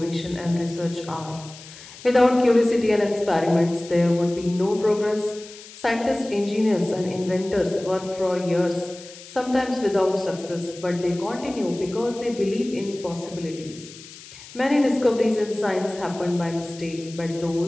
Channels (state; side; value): noise; left; hiss, 17 dB below the sound